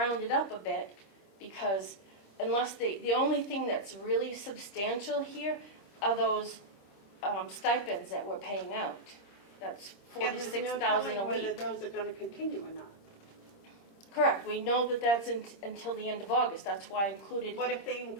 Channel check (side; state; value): right; late; 25 ms